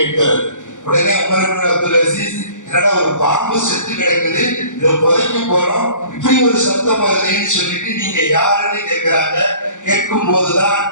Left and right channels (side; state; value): right; late; 0.86 ms